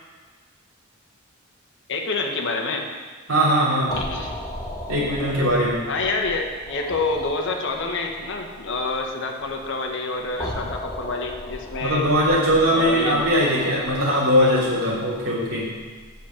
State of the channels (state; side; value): normal; both; correlation 0.01